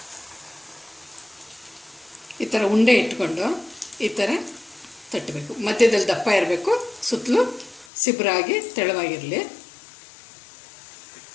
ಈ ಥರ ಉಂಡೆ ಇಟ್ಕೊಂಡು ಈ ಥರ ತಟ್ಟಬೇಕು. ಮಧ್ಯದಲ್ಲಿ ದಪ್ಪ ಇರಬೇಕು, ಸುತ್ತಲೂ ಸಿಬ್ರಾಗಿ ತೆಳುವಾಗಿರಲಿ.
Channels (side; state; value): right; drops out; at 7.9 s